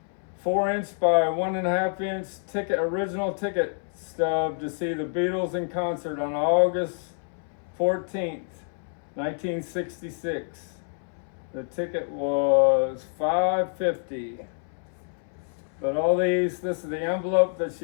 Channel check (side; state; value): right; silent; 60 dB below the other